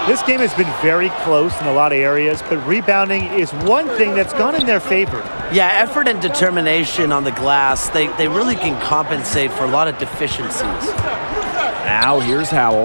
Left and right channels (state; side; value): inverted; both; correlation -1.00